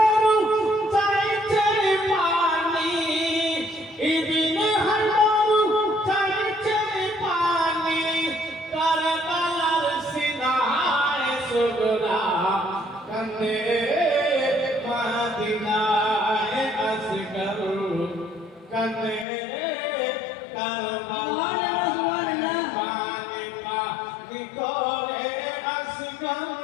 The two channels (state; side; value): drops out; right; at 19.2 s